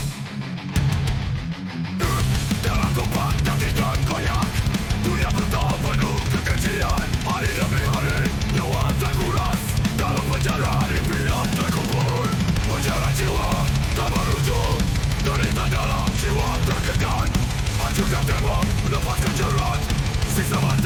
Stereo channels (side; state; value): both; identical; correlation 1.00